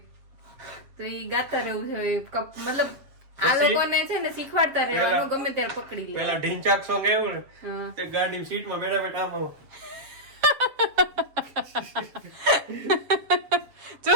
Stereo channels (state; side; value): late; left; 7.4 ms